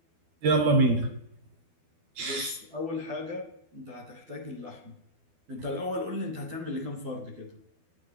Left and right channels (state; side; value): late; left; 12 ms